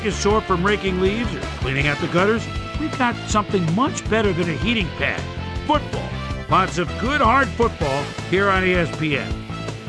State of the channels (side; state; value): both; identical; correlation 1.00